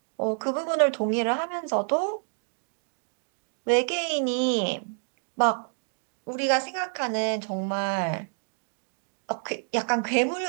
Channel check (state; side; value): silent; left; digital silence